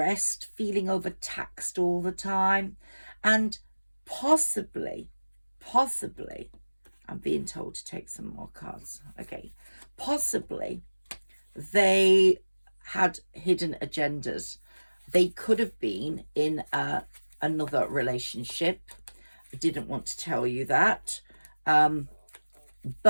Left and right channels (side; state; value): both; inverted; correlation -1.00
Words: feeling overtaxed all the time, and possibly, I'm being told to take some more cards. Okay, possibly they had hidden agendas. They could have been in another relationship. I didn't want to tell you that,